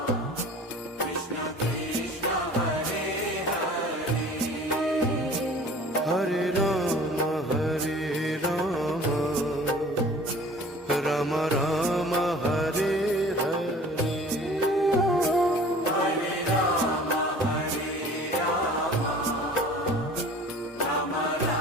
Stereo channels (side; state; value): both; normal; correlation 0.46